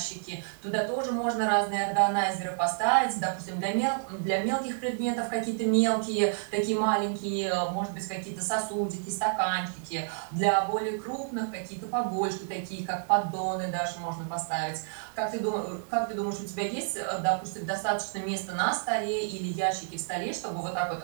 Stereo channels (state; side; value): silent; left; 58 dB below the other